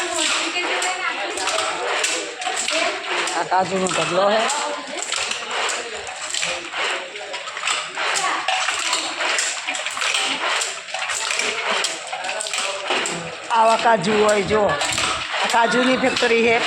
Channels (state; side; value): identical; both; correlation 1.00